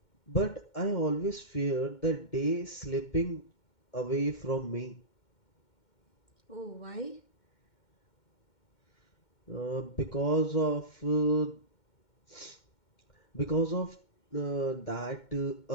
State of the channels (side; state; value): right; late; 2.1 ms